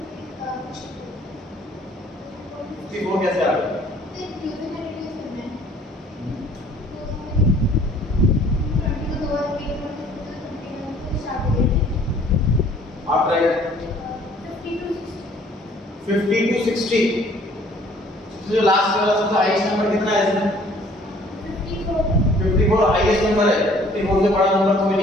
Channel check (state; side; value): normal; both; correlation 0.57